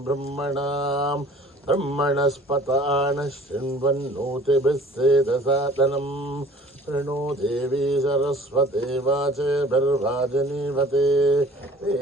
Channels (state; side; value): normal; both; correlation 0.50